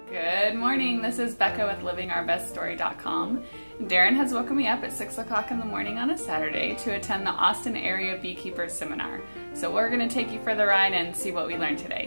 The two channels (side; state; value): both; inverted; correlation -1.00